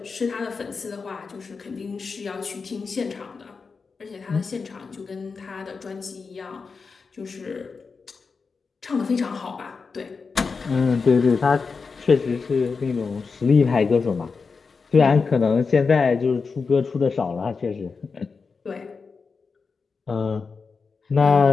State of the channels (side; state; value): right; quieter; 4.9 dB